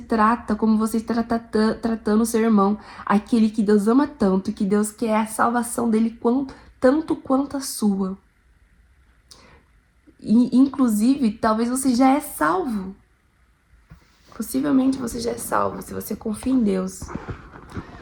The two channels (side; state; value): both; identical; correlation 1.00